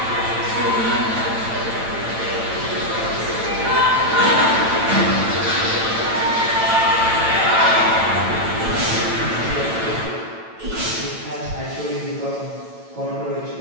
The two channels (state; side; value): late; left; 9.0 ms